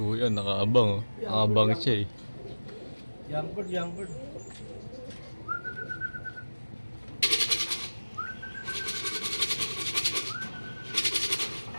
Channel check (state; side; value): inverted; both; correlation -1.00